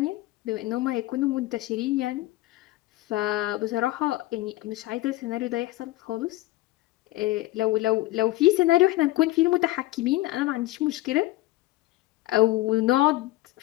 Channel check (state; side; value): quieter; right; 18.1 dB